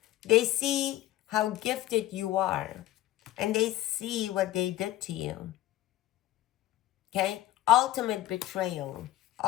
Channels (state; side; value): quieter; right; 14.8 dB